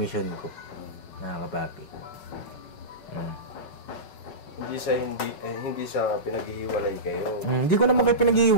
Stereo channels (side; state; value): right; late; 5.4 ms